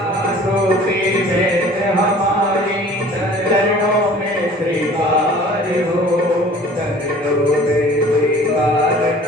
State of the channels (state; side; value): normal; both; correlation 0.48